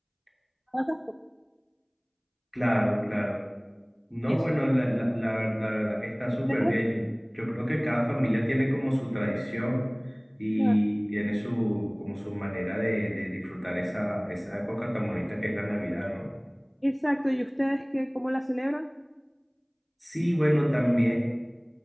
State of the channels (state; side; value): identical; both; correlation 1.00